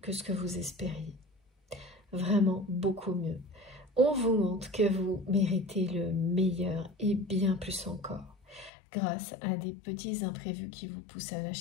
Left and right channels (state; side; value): drops out; right; at 8.7 s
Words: que ce que vous espériez. Vraiment beaucoup mieux. On vous montre que vous méritez le meilleur et bien plus encore, grâce à des petits imprévus qui vous poussent à